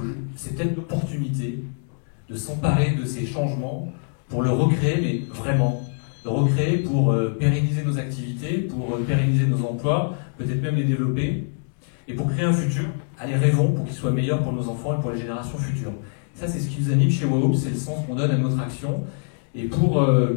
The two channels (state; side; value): silent; right; digital silence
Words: c'est peut-être l'opportunité de s'emparer de ces changements pour le recréer, mais vraiment. Le recréer pour pérenniser nos activités, pour pérenniser nos emplois, peut-être même les développer, et pour créer un futur. Allez, rêvons pour qu'il soit meilleur pour nos enfants et pour les générations futures. Ça, c'est ce qui nous anime chez WOW, c'est le sens qu'on donne à notre action. Et pour